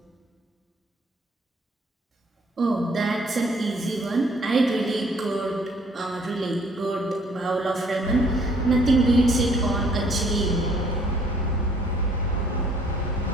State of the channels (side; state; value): both; normal; correlation 0.62